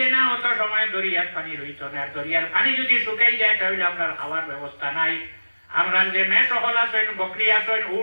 না অত সময় দরিয়ার পানি রইত না দরিয়ার পানি যদি শুকাই যায় তাহলে আমরা খাওয়ার ব্যবস্থা নাই আমরা যে মেয়ে সকল আছেন বকরি আছেন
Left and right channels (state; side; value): inverted; both; correlation -1.00